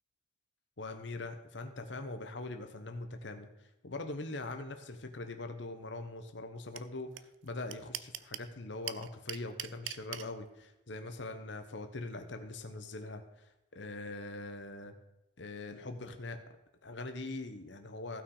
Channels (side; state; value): both; normal; correlation 0.21